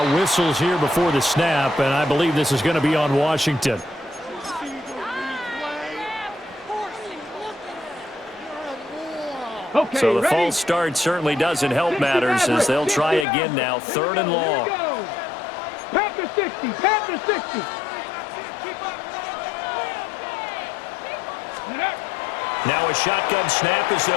whistles here before the snap, and I believe this is going to be on Washington. Okay, So the ready? false start certainly doesn't help matters as they'll try again now. 3rd and long. Panther 60, Panther 60. Now a shotgun snap as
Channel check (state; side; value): drops out; right; at 13.2 s